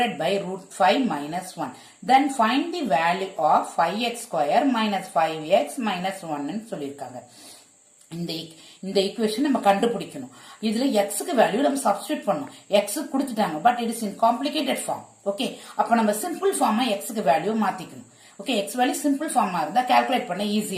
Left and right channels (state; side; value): identical; both; correlation 1.00